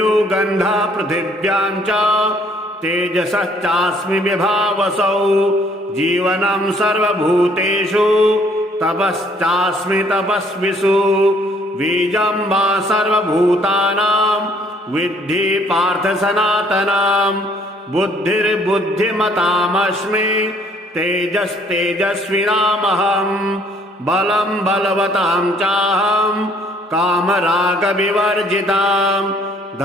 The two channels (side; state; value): both; normal; correlation 0.62